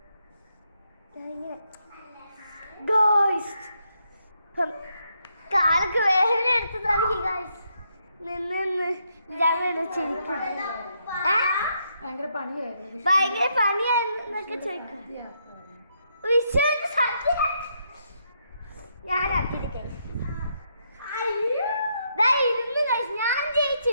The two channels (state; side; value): inverted; both; correlation -0.77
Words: കാലൊക്കെ വേദന എടുത്ത് തുടങ്ങി ഗൈസ്. നിന്ന് ചിരിക്കും. ഭയങ്കര പണിയായിരുന്നു. ഭയങ്കര പണിയാന്നൊക്കെ ചോദിക്കും. ഞാനാക്കിയിട്ട് കഴിച്ചു. ഇരുന്ന് കഴിച്ചു. ഞാൻ ജയിച്ചു.